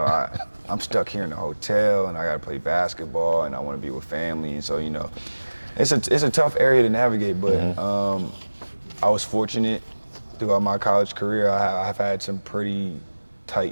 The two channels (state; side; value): inverted; both; correlation -1.00